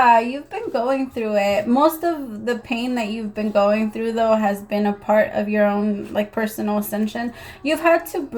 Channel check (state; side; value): identical; both; correlation 1.00